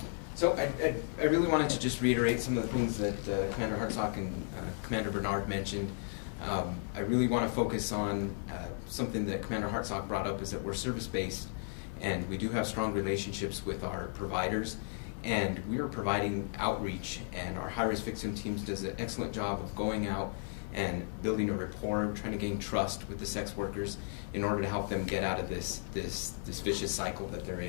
So I really wanted to just reiterate some of the things that Commander Hartsock and Commander Bernard mentioned. I really want to focus on something that Commander Hartsock brought up, is that we're service-based, and we do have strong relationships with our providers, and we are providing outreach, and our high-risk victim teams does an excellent job of going out and building a rapport, trying to gain trust with the sex workers in order to help them get out of this vicious cycle that they're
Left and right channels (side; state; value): right; silent; 55 dB below the other